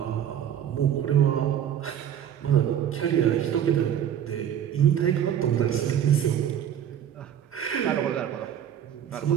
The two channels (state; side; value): quieter; left; 9.8 dB